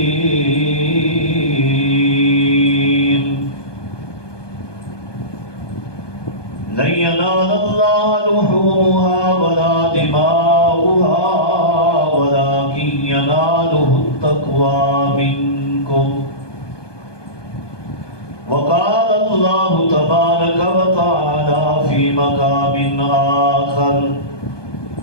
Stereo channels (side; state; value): right; late; 1.2 ms